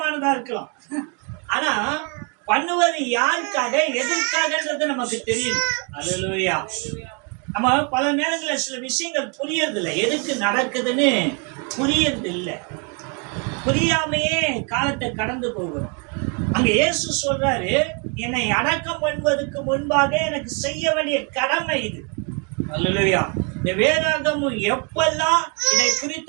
இருக்கலாம். ஆனா பண்ணுவது யாருக்காக, எதற்காகன்றது நமக்கு தெரியும். அல்லேலூயா. நம்ம பல நேரங்களில் சில விஷயங்கள் புரியறதில்லை, எதுக்கு நடக்குதுன்னு புரியறது இல்லை. புரியாமையே காலத்தை கடந்து போகிறோம். அங்க இயேசு சொல்றாரு, என்னை அடக்கம் பண்ணுவதற்கு முன்பாக எனக்கு செய்ய வேண்டிய கடமை இது. அல்லேலூயா. இந்த வேதாகமும் எப்பெல்லாம் இதை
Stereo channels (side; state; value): left; quieter; 35.1 dB